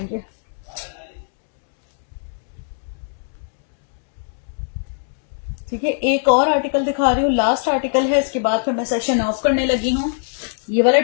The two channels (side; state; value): right; silent; digital silence